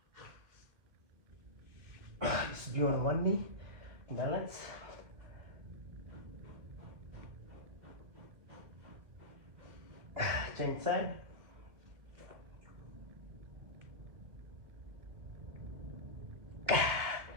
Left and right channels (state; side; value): late; left; 2.6 ms